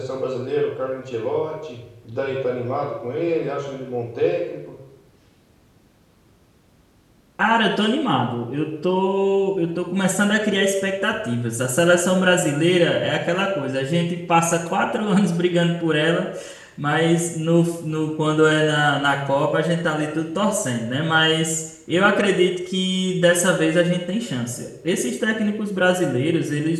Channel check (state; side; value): identical; both; correlation 1.00